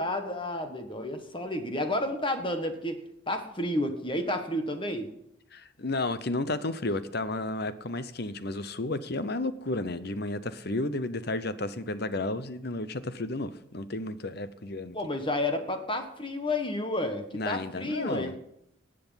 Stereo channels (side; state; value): both; normal; correlation 0.27